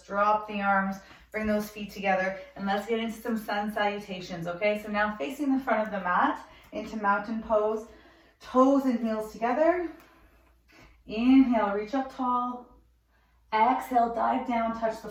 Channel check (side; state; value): both; identical; correlation 1.00